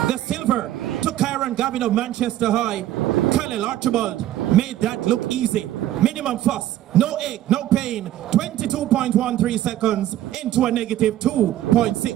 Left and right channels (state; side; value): quieter; left; 13.1 dB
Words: The silver to Kyron Gavin of Manchester High. Khalil Archibald made that look easy. Minimum fuss, no ache, no pain. 22.13 seconds into a negative